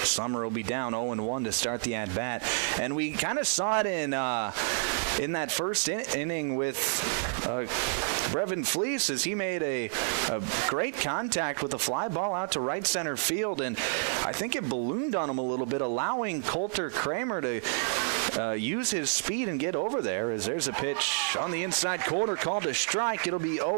Summer will be down 0-1 to start the at-bat. And we kind of saw it in that first inning with Brevin Fleece as he made a great contact with a fly ball out to right center field. And I think it ballooned on him a little bit, allowing Coulter Kramer to use his speed and get over there. As there's a pitch on the inside corner called a strike. It'll be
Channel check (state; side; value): silent; left; digital silence